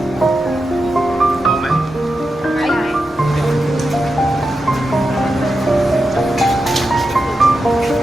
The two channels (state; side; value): normal; both; correlation 0.89